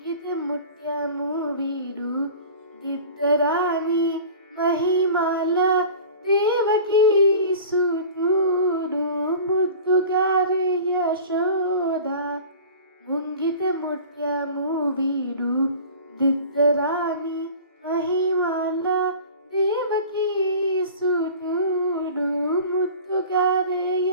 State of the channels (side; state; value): both; inverted; correlation -0.40